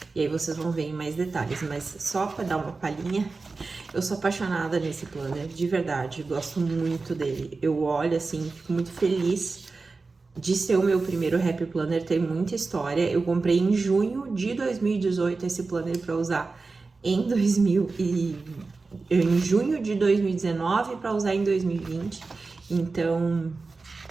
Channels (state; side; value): quieter; left; 4.0 dB